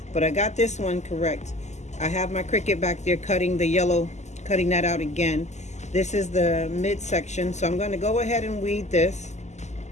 But I got this one correct. I have my Cricut back there cutting the yellow, cutting that out again. This is the midsection, so I'm going to go ahead and weed this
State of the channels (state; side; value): late; right; 0.33 ms